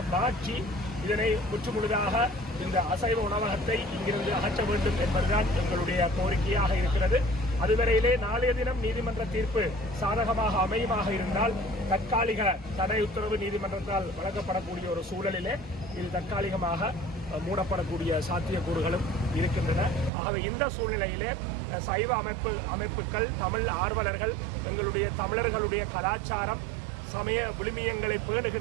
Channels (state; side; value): drops out; left; at 20.1 s